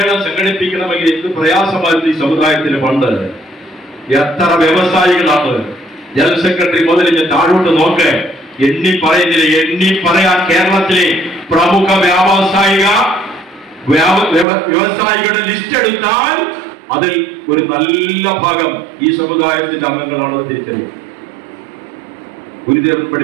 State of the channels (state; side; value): drops out; left; at 14.5 s